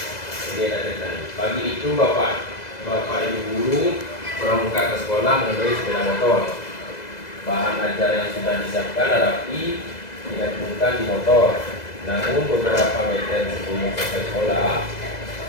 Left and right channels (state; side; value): late; right; 2.0 ms